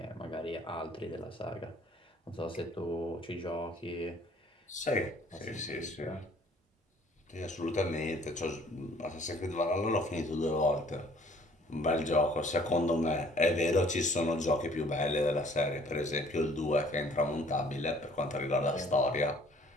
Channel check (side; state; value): both; normal; correlation 0.56